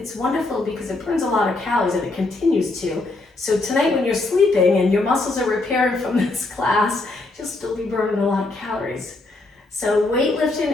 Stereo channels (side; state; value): right; quieter; 3.1 dB